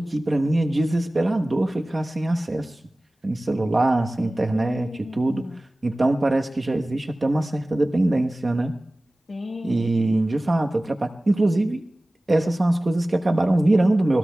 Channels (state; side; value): normal; both; correlation 0.98